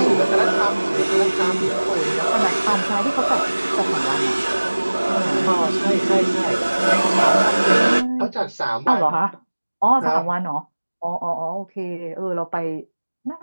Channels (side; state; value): both; inverted; correlation -1.00